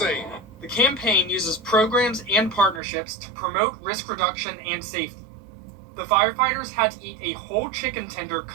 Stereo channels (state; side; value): drops out; left; at 2.8 s